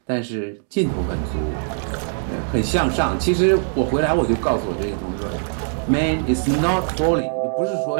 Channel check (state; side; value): silent; left; digital silence